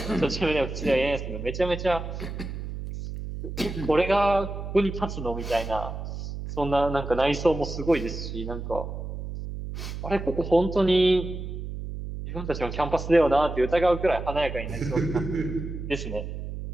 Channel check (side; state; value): right; noise; hum, 7 dB below the sound